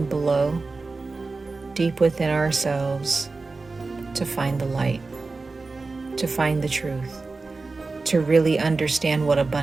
below, deep within ourselves, to find the light, to find the truth, to really understand what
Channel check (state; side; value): quieter; left; 3.8 dB